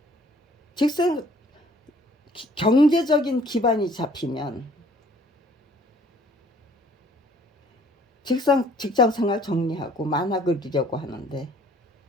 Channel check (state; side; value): normal; both; correlation 0.57